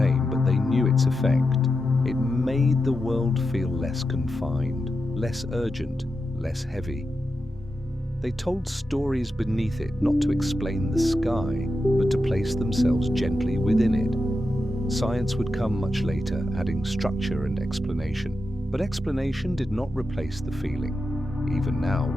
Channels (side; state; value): both; normal; correlation 0.89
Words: but they knew its effect. It made the world feel less confined, less urgent, less heavy. They told stories beneath it, not to explain the sky, but to place themselves gently within it. Science would come much later, adding structure and explanation. But explanation did not replace the feeling. Even now,